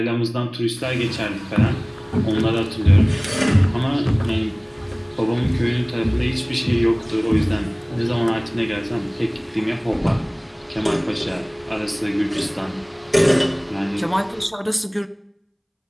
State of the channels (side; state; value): both; identical; correlation 1.00